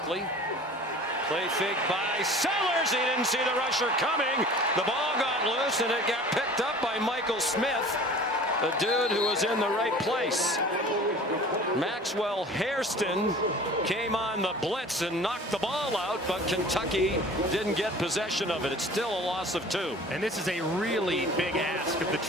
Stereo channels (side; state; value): both; normal; correlation 0.44